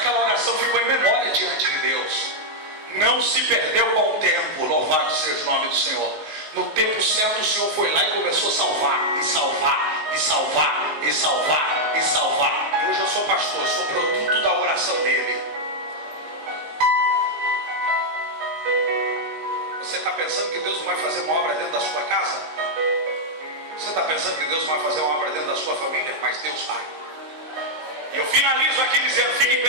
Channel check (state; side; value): late; left; 19 ms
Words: oração ficou em memória diante de Deus. Não se perdeu com o tempo. Louvado seja o nome do Senhor. No tempo certo o Senhor foi lá e começou a salvar, e salvar, e salvar, e salvar, e salvar. E hoje eu sou pastor, eu sou produto da oração dele. Você está pensando que Deus não vai fazer uma obra dentro da sua casa? Você está pensando que Deus não vai fazer uma obra dentro da sua família? Mas Deus está. E eu finalizo aqui dizendo, fique em